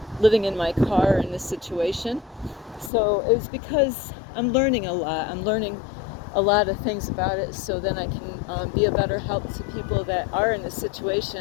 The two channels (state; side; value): drops out; right; at 2.9 s